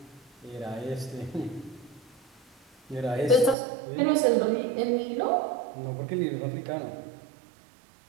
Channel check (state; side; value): drops out; left; at 3.6 s